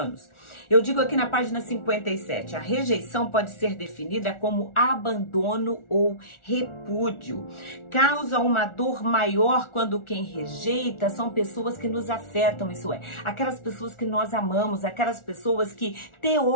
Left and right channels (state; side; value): late; right; 1.4 ms